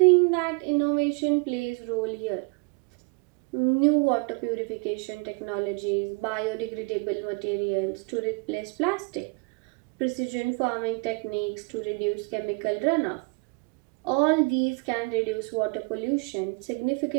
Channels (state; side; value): quieter; left; 31.5 dB